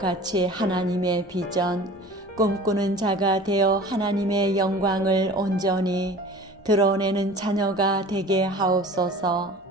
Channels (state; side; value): normal; both; correlation 0.42